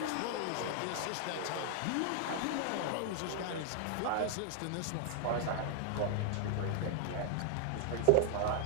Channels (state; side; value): different; both; correlation 0.00